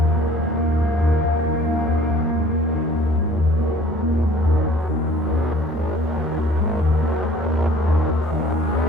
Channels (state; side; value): normal; both; correlation 0.51